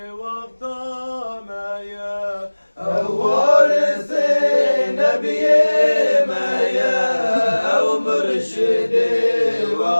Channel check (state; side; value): inverted; both; correlation -1.00